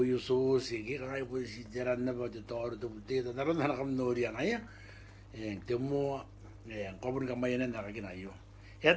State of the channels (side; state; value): both; identical; correlation 1.00